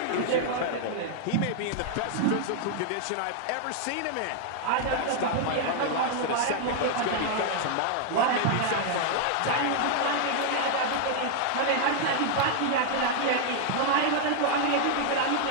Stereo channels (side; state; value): both; different; correlation 0.00